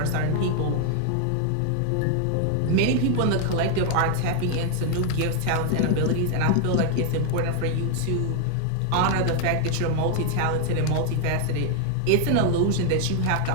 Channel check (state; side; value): different; both; correlation 0.00